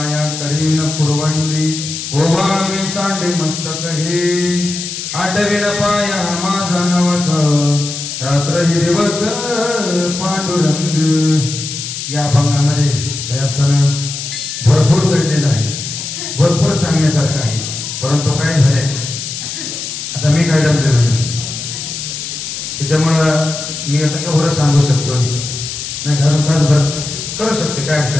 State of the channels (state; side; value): noise; left; hiss, 6 dB below the sound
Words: करीन पुरवंडी ओवाळवे सांडे मस्तक हे आठविन पाया माझा नवस रात्र ही दिवस पांडुरंग। या अभंगामध्ये त्यातनं भरपूर दडलेलं आहे, भरपूर सांगण्यासारखं आहे, परंतु काय झालंय आता मी काय जमलेलो नाही, त्याच्यामुळं मी आता कवर सांगू शकतो नाही, घरून तासभर करू शकते, काय